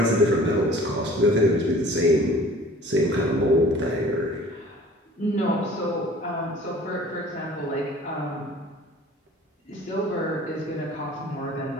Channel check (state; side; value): normal; both; correlation 0.48